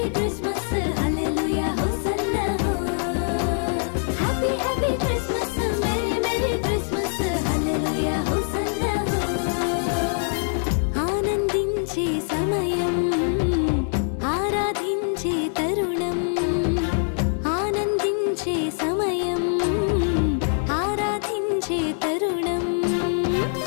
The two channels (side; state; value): right; silent; 63 dB below the other